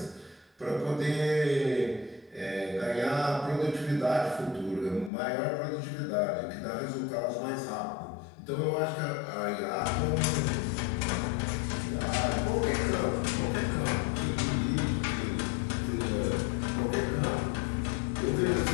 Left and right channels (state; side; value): drops out; right; at 5.1 s